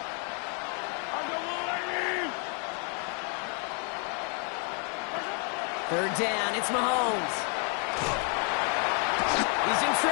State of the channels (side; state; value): right; quieter; 39.8 dB